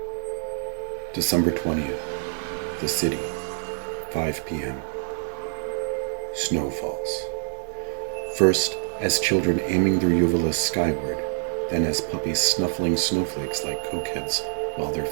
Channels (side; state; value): left; silent; 61 dB below the other